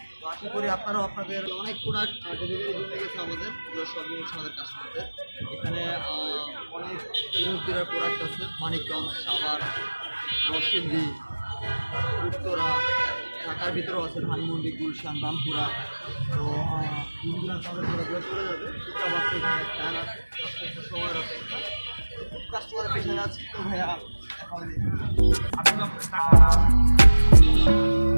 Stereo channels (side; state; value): both; inverted; correlation -1.00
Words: তো আশা করি আপনারাও আপনাদের অনেক প্রোডাক্ট ডেলিভারি জন্য গেছে আমাদের, এগুলো সবই হচ্ছে আমাদের কাস্টমারদের। এখানে অনেক দূরের প্রোডাক্ট আছে, মানিকগঞ্জ, সাভার, নরসিংদী, উত্তরা, ঢাকার ভিতরেও আছে, ধানমন্ডি, গুলশান, রামপুরা। তো দূর চলে যাবে, এখানে ফ্যান আছে, সময়ের অপেক্ষা, কাস্টমারের পেছনে আছে। তো ভাইয়া এখন